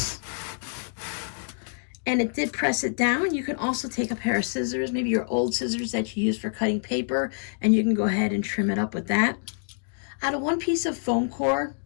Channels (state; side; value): silent; right; digital silence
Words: and it did press it down. You can also take a pair of scissors, maybe your old scissors that you use for cutting paper, and you can go ahead and trim it up with that. Out of one piece of foam core,